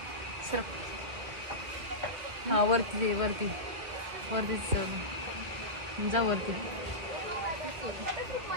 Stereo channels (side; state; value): left; late; 2.7 ms